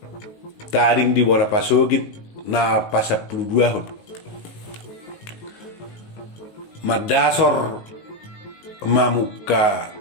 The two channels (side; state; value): right; late; 19 ms